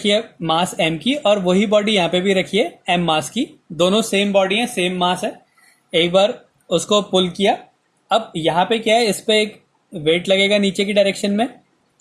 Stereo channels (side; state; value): both; identical; correlation 1.00